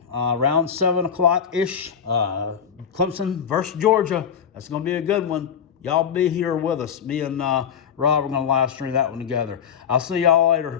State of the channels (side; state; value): right; quieter; 7.8 dB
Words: around 7 o'clock-ish. Clemson versus Georgia. That's going to be a good one. Y'all be here with us. Me and Rob are going to live stream that one together. I'll see y'all later.